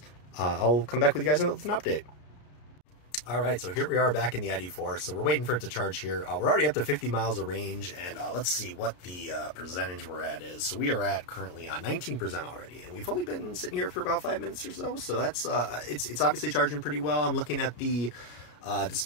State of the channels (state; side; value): late; right; 33 ms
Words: I'll come back with you guys with an update. All right, so here we are back in the ID.4. So we're waiting for it to charge here. We're already up to 50 miles of range, and let's see what the percentage we're at is. So we are at currently 19% already, and we've only been sitting here for about 5 minutes or so. So that's it's obviously charging pretty well. I'm looking at the